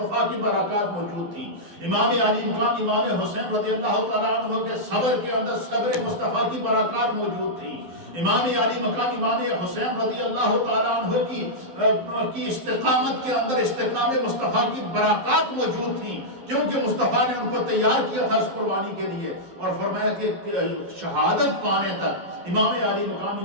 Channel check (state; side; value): late; left; 11 ms